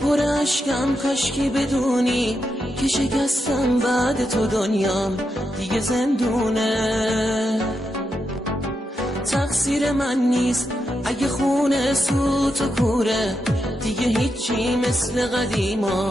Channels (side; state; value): both; normal; correlation 0.85